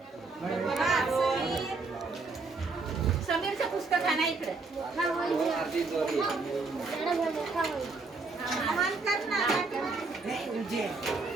समीरचं पुस्तक आणा इकडे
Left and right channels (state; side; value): quieter; left; 3.8 dB